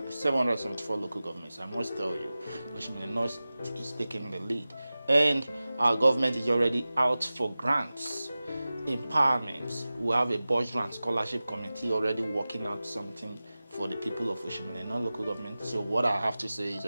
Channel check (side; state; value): both; inverted; correlation -0.96